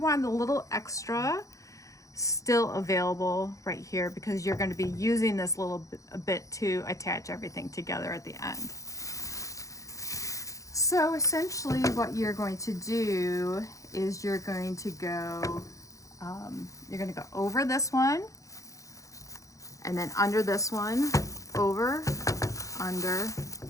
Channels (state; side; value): late; right; 0.16 ms